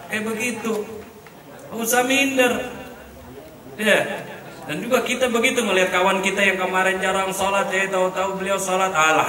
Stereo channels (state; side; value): identical; both; correlation 1.00